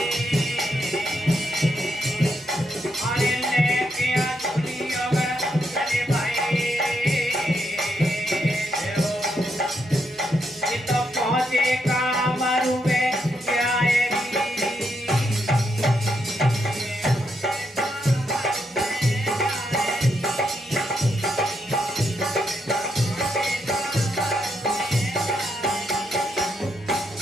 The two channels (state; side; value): normal; both; correlation 0.79